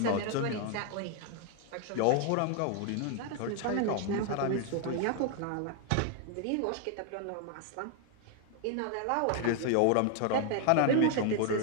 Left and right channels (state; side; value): different; both; correlation 0.01